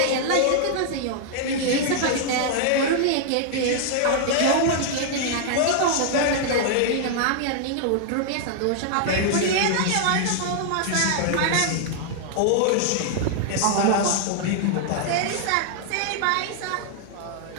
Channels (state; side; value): different; both; correlation -0.01